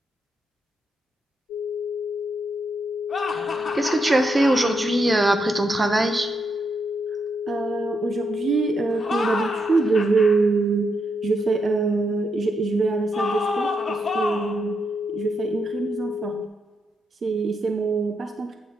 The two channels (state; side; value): normal; both; correlation 0.81